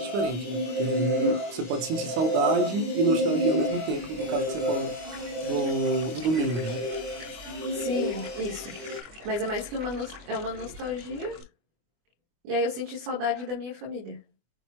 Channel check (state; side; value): late; left; 25 ms